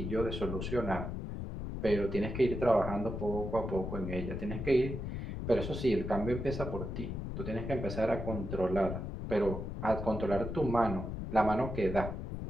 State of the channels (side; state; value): left; noise; rumble, 5 dB below the sound